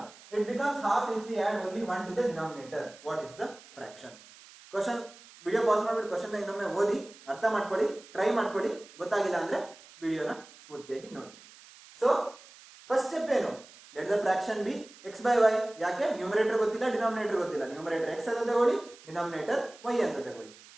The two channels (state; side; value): noise; right; hiss, 21 dB below the sound